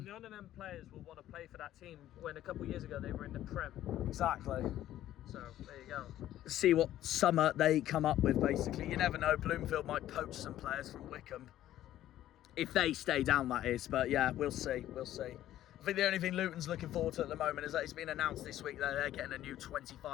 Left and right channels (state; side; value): quieter; right; 13.0 dB